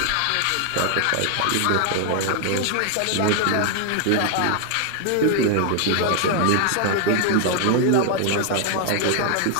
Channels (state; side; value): different; both; correlation 0.00